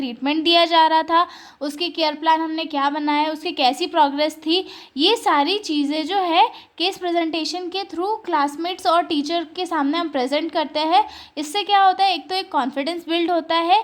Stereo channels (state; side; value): identical; both; correlation 1.00